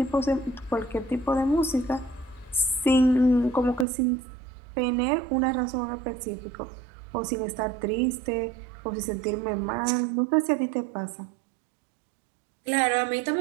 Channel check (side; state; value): left; drops out; at 3.9 s